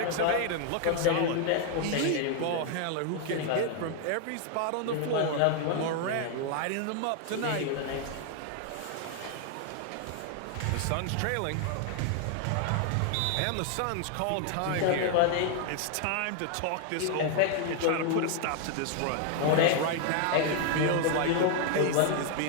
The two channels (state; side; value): different; both; correlation 0.00